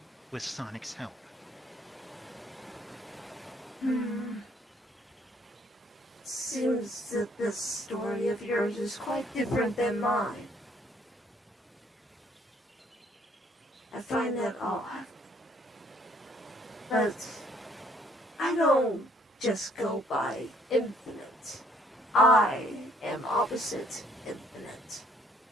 with Sonic's help. Seems that this story of yours is quite different than mine. I find that odd. But I don't just go by infinite. I am Oppsite Infinite.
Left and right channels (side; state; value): both; normal; correlation 0.64